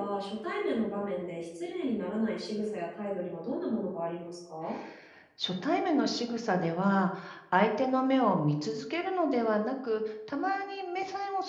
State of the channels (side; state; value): both; identical; correlation 1.00